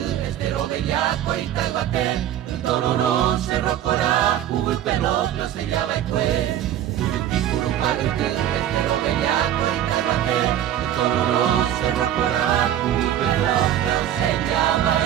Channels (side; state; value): left; quieter; 11.2 dB